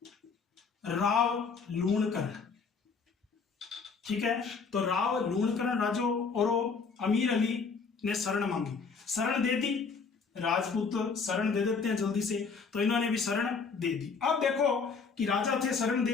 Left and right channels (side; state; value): right; quieter; 5.1 dB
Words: राव लूणकरण। ठीक है, तो राव लूणकरण राजो और अमीर अली ने शरण मांगी, शरण दे दी। राजपूत शरण दे देते हैं जल्दी से, तो इन्होंने भी शरण दे दी। अब देखो कि राजा थे, शरण